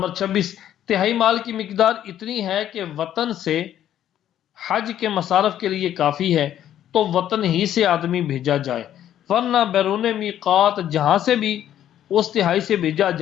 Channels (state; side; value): quieter; right; 11.2 dB